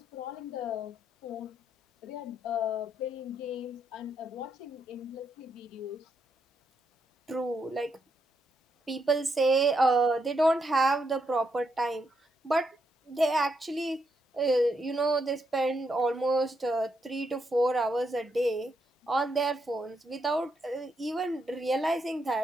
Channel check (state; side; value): normal; both; correlation 0.79